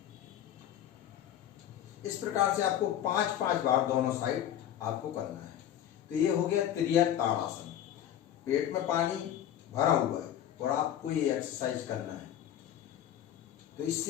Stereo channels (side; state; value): right; quieter; 11.0 dB